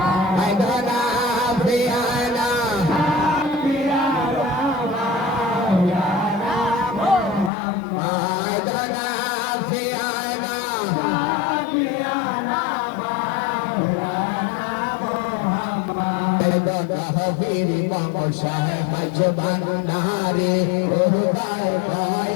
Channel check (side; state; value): right; drops out; at 7.5 s